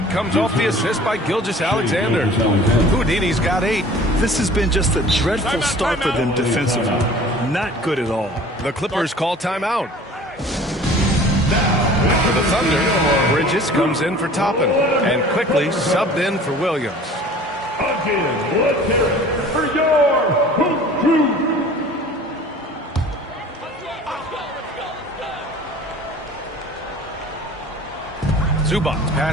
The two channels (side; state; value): both; normal; correlation 0.46